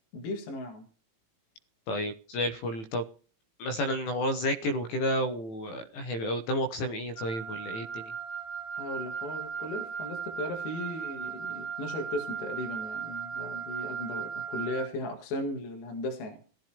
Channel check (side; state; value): right; late; 18 ms